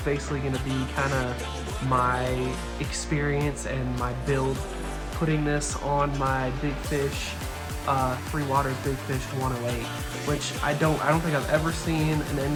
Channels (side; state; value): both; identical; correlation 1.00